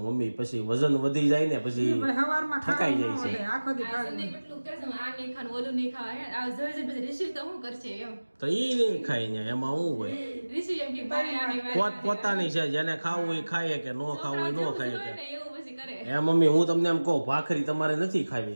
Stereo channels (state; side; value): inverted; both; correlation -1.00